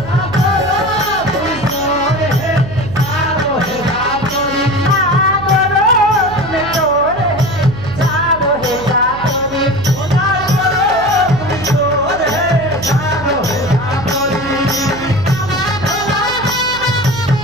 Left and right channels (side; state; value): right; noise; hum, 13 dB below the sound